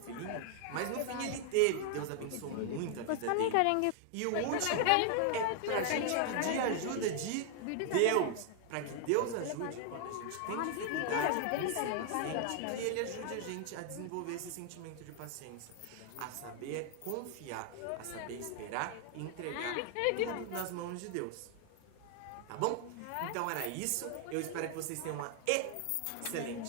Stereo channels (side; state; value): both; different; correlation 0.00